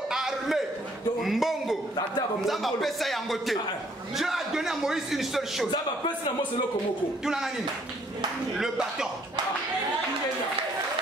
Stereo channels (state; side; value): normal; both; correlation 0.64